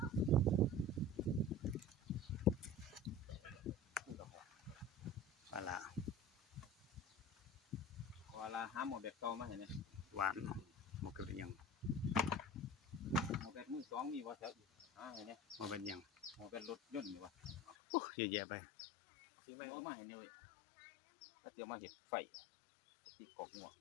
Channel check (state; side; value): drops out; right; at 17.8 s